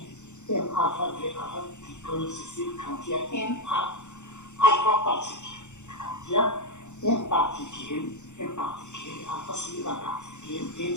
m alpha v alpha plutôt successive quand il y a n alpha particules. Quand il y a n particules, alpha c'est la particule, n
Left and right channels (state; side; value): late; right; 0.83 ms